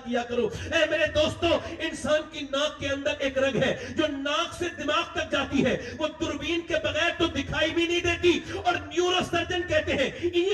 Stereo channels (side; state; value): both; identical; correlation 1.00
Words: کیا کرو. اے میرے دوستو, انسان کی ناک کے اندر ایک رگ ہے جو ناک سے دماغ تک جاتی ہے, وہ دوربین کے بغیر تو دکھائی بھی نہیں دیتی، اور نیورو سرجن کہتے ہیں،